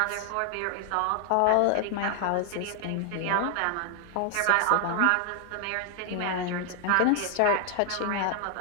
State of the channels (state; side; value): different; both; correlation 0.00